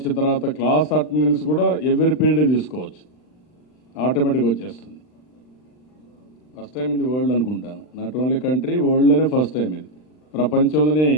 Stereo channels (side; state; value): right; late; 39 ms